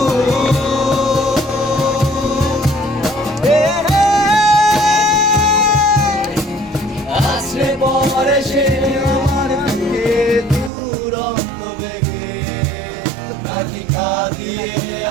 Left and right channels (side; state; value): left; drops out; at 10.7 s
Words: আসলে পরে সে আমার বুকে দুরন্ত বেগে কালিকা দিয়ে